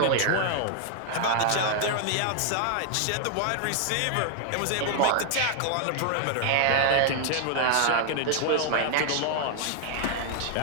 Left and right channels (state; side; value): different; both; correlation 0.00